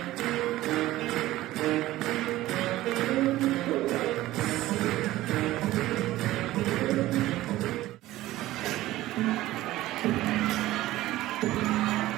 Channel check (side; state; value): left; quieter; 16.3 dB